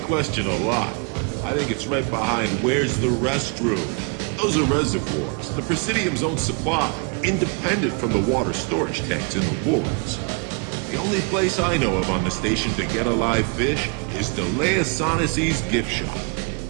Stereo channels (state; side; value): quieter; left; 35.6 dB